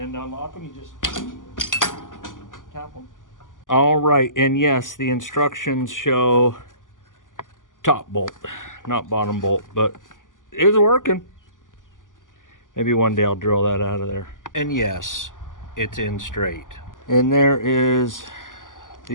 to unlock them, you just tap them. All right, and yes, the instructions show top bolt, not bottom bolt, but it's working. Maybe one day I'll drill that out of there. And yes, it's in straight. And there is,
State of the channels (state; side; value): late; right; 0.88 ms